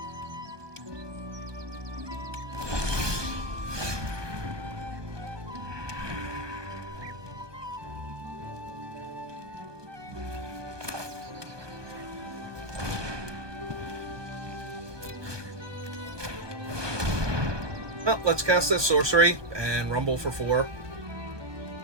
Well, let's cast this sorcery and rumble for 4.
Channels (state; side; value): late; left; 1.2 ms